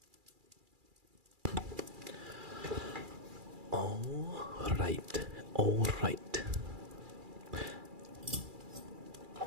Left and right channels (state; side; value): late; left; 2.4 ms